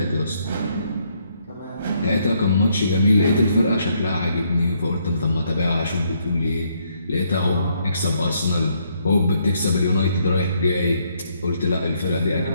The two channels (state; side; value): inverted; both; correlation -0.72